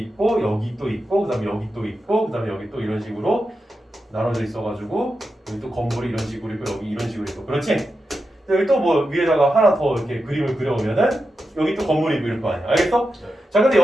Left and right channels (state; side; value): normal; both; correlation 0.89